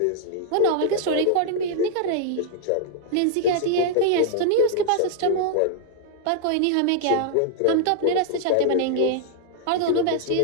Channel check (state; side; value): different; both; correlation -0.01